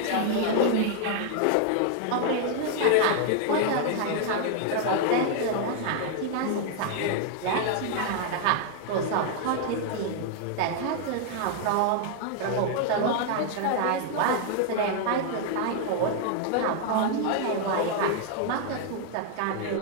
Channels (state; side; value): different; both; correlation 0.00